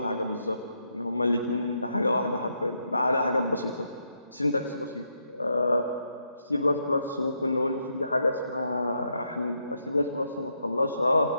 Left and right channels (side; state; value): both; inverted; correlation -0.78